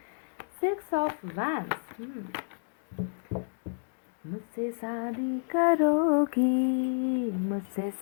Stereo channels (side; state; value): right; silent; digital silence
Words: 6 ऑफ वैंड्स। मुझसे शादी करोगी, मुझसे